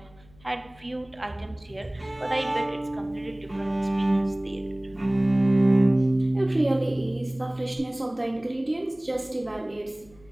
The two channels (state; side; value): noise; left; hum, 27 dB below the sound